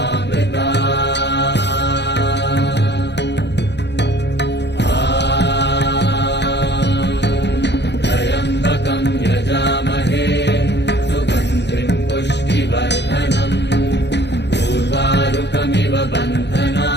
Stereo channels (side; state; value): right; late; 0.50 ms